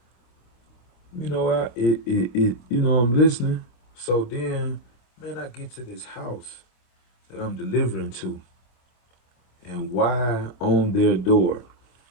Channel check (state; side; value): late; right; 26 ms